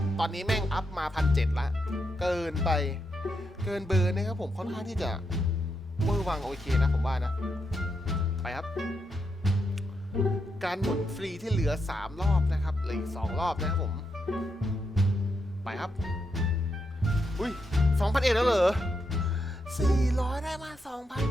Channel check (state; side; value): normal; both; correlation 0.82